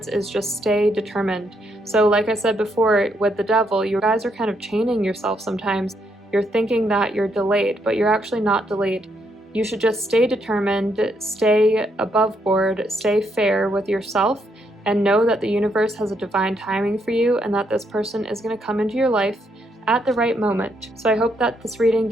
is just stay determined. So like I said before, with the Devil, you guys are kind of chaining yourself sometimes. You're thinking that you're delayed, but you're actually not delayed. You should just stay determined, stay above board, stay fair with yourself, and know that the universe has a divine timing for you and that this person is going to come into your life at the right moment. So I hope that this reading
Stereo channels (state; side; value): normal; both; correlation 0.76